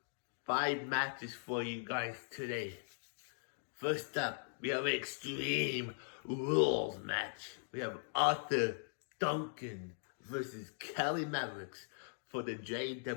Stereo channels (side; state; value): right; silent; digital silence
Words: 5 matches for you guys today. First up, we have an Extreme Rules match. We have Arthur Duncan versus Kelly Mavericks for the